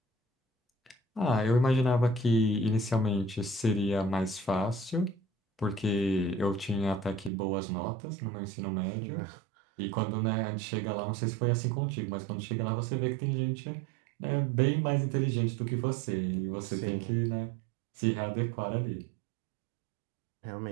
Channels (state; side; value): drops out; left; at 7.3 s